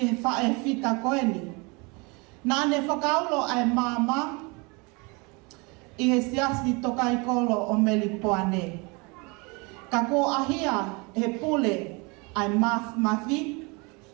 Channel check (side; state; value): left; quieter; 28.7 dB